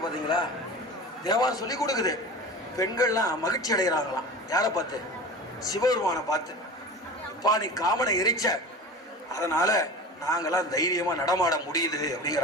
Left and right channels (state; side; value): normal; both; correlation 0.34